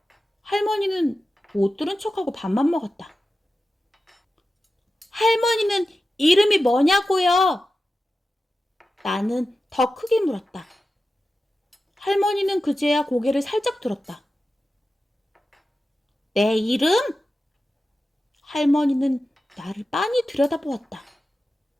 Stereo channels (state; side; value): normal; both; correlation 0.93